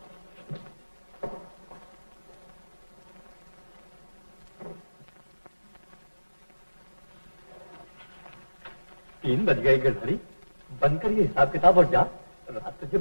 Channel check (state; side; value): inverted; both; correlation -1.00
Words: 3 बज गए गिरधारी, बंद कर ये हिसाब किताब और जा। रात तुझे